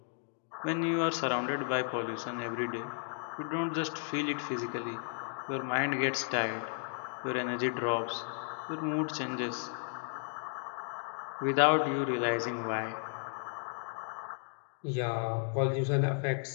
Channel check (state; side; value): silent; right; 55 dB below the other